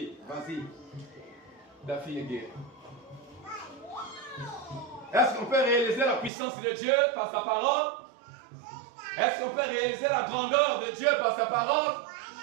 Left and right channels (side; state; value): left; drops out; at 6.3 s